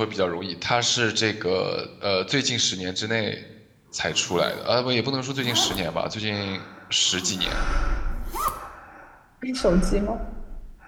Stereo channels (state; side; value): identical; both; correlation 1.00